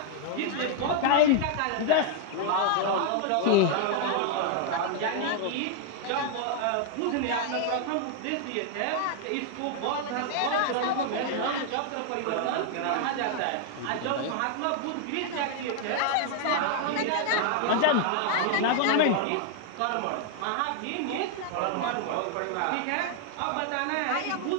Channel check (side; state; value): both; different; correlation 0.00